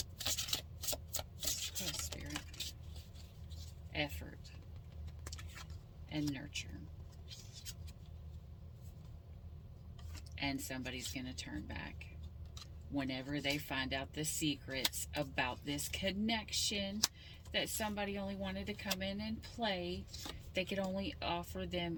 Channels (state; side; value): identical; both; correlation 1.00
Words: Quest, Spirit. Effort and nurture. And somebody's going to turn back. Whenever they find out the secrets about this connection, that somebody only wanted to come in and play, they could only offer